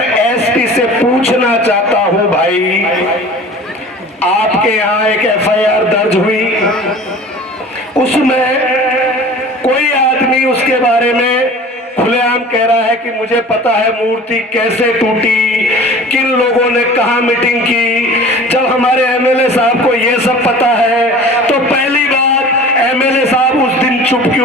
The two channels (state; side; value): normal; both; correlation 0.42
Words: एसपी से पूछना चाहता हूं, भाई आपके यहाँ एक एफआईआर दर्ज हुई, उसमें कोई आदमी उसके बारे में खुलेआम कह रहा है कि मुझे पता है मूर्ति कैसे टूटी, किन लोगों ने कहां मीटिंग की। जब हमारे एमएलए साहब को यह सब पता है तो पहली बात, एमएलए साहब उस दिन चुप